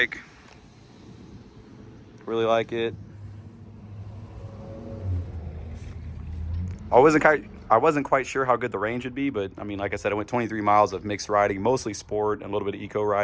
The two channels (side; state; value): both; identical; correlation 1.00